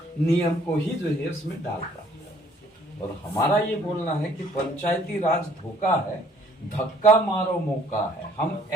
नियम को ही जो है उसमें डाल रहा है। और हमारा ये बोलना है कि पंचायती राज धोखा है, धक्का मारो मौका है। हम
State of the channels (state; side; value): normal; both; correlation 0.59